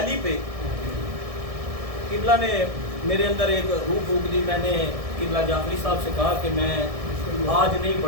پہ قبلہ نے میرے اندر ایک روح پھونک دی۔ میں نے قبلہ جعفری صاحب سے کہا کہ میں آج نہیں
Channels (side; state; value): left; late; 1.6 ms